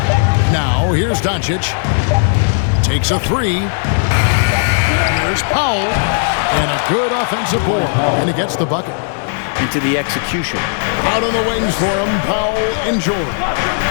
Now, here's Doncic. Takes a three. Here's Powell. And a good offensive board. And he gets the bucket. Into the execution. Out on the wings for him, Powell and George.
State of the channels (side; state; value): right; silent; digital silence